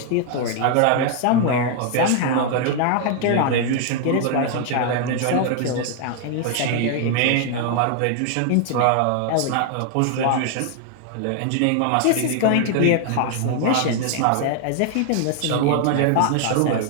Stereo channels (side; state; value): both; different; correlation 0.00